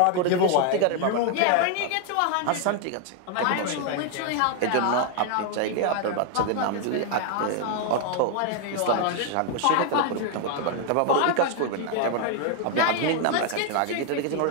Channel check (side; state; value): both; different; correlation 0.00